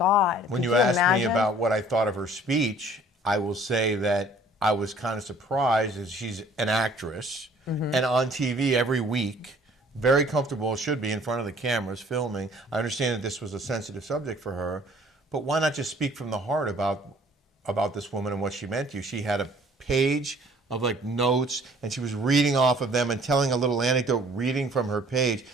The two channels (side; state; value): both; normal; correlation 0.55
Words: When you asked me about what I thought of her speech, I will say that I was kind of surprised as she's an actress and on TV every week, very comfortable, should be in front of the cameras filming. I understand that this was a sensitive subject for her, but why not just speak from the heart about this woman and what she meant to you? She had a page of notes, and she was reading off of them and telling a little anecdote, reading from her page.